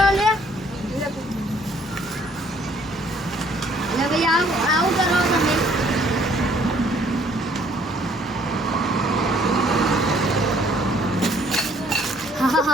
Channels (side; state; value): both; normal; correlation 0.61